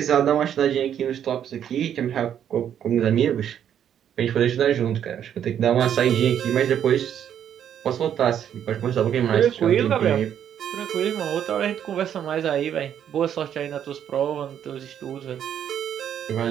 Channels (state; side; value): quieter; left; 9.5 dB